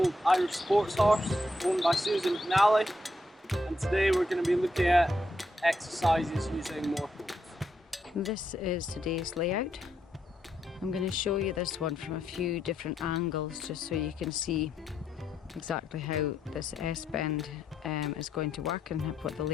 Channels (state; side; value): normal; both; correlation 0.78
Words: Irish sports horse owned by Susan McNally, and today we're going to be looking at exercises using more poles. This is today's layout. I'm going to show you this one from a few different angles just so you can see exactly how this S-bend is going to work and what the